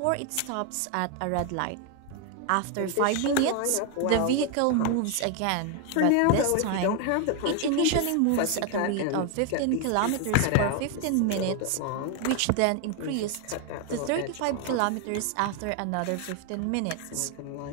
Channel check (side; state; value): both; different; correlation 0.01